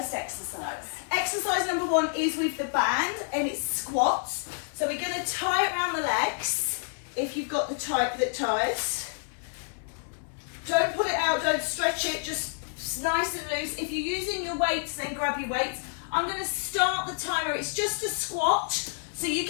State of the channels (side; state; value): right; silent; 59 dB below the other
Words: exercise. Exercise number 1 is with the band and it's squats. So we're going to tie it around the legs. If you've got the type that ties, don't pull it out, don't stretch it, just nice and loose. If you're using your weights, then grab your weights. I'm going to start the timer. It's just a squat, so you